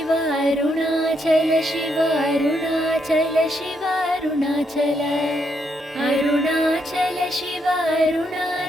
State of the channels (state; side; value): normal; both; correlation 0.77